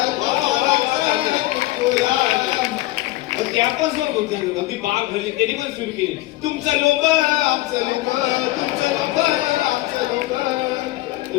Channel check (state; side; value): quieter; right; 17.9 dB